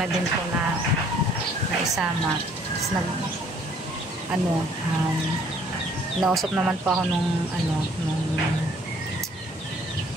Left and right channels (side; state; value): both; normal; correlation 0.60